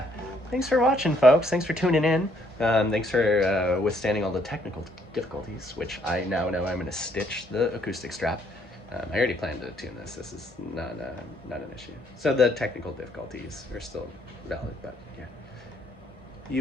thanks for watching, folks. Thanks for tuning in. Thanks for withstanding all the technical difficulties, which I now know I'm going to stitch the acoustic strap. I already planned to tune this. This is not an issue. So the technical difficulties are still valid, but yeah.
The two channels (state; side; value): normal; both; correlation 0.68